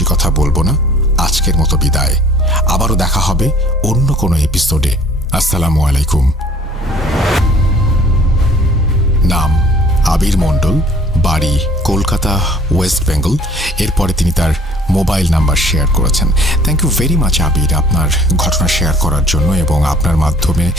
কথা বলবো না, আজকের মতো বিদায়। আবারও দেখা হবে অন্য কোনো এপিসোডে। আসসালামু আলাইকুম। নাম আবির মণ্ডল, বাড়ি কলকাতা, ওয়েস্ট বেঙ্গল। এরপরে তিনি তার মোবাইল নাম্বার শেয়ার করেছেন। থ্যাংক ইউ ভেরি মাচ আবির, আপনার ঘটনা শেয়ার করার জন্য। এবং আপনার মাধ্যমে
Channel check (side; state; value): both; normal; correlation 0.54